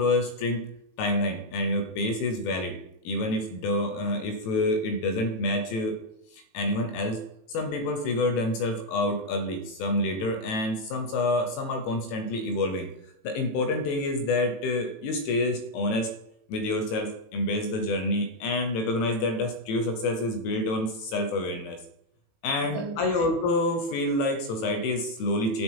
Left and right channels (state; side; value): late; right; 18 ms